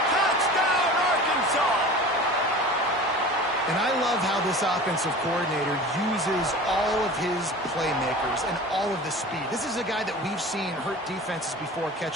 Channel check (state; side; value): normal; both; correlation 0.38